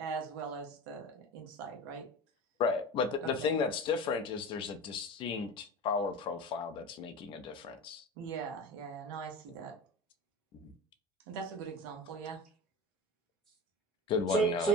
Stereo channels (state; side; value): normal; both; correlation 0.31